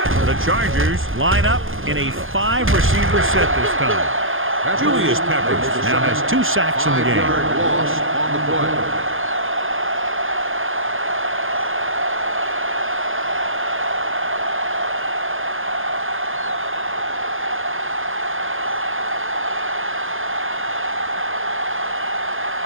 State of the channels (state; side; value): late; left; 0.59 ms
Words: The Chargers line up in a 5-receiver set this time. Julius Peppers now has 2 sacks in the game. 5-yard loss on the play.